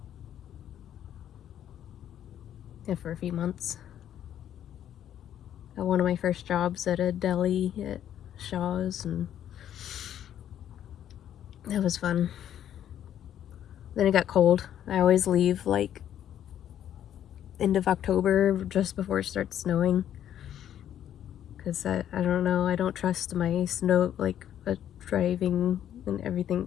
Yeah, for a few months. Got one of my first jobs at a deli at Shaw's, and that was fun. Then it got cold. I always leave like end of October, just before it starts snowing. Because I don't know, I don't trust my snow, like driving and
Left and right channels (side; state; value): right; quieter; 10.6 dB